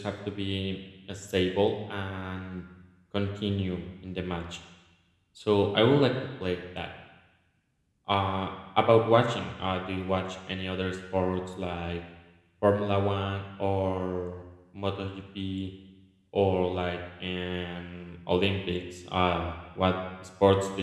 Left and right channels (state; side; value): identical; both; correlation 1.00